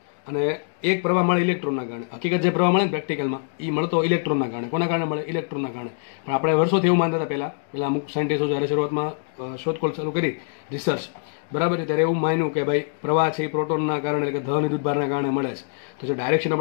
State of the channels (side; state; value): right; silent; digital silence